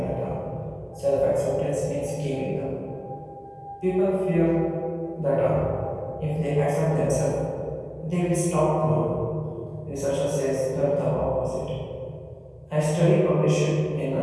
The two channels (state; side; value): identical; both; correlation 1.00